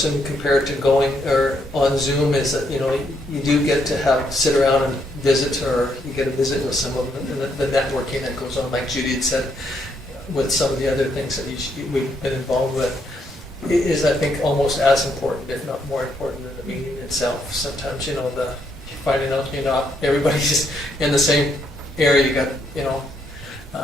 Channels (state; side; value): normal; both; correlation 0.75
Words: compared to going or on Zoom is that you do get to sit around and visit, or you get a visit with some of the networking that goes on, like Judy had said, with some of the other things that we've been involved with. It is, I think, almost as important, if not more important, than the meeting itself. Sometimes finding out not everybody's in the same area. You got